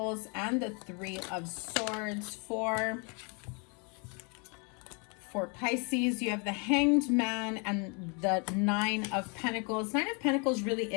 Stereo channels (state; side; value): quieter; right; 34.2 dB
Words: and the Three of Swords for Pisces. You have the Hanged Man and the Nine of Pentacles. Nine of Pentacles really